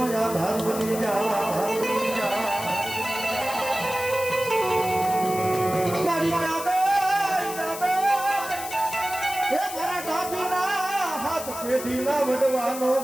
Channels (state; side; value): noise; left; hiss, 10 dB below the sound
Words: આધાર બની હાથ પેઢીના વડવાનો